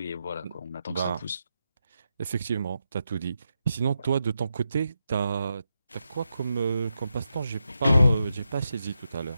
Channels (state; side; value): inverted; both; correlation -0.86